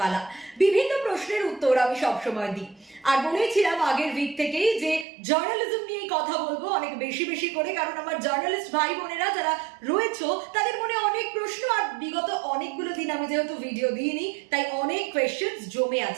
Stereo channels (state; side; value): drops out; left; at 5.1 s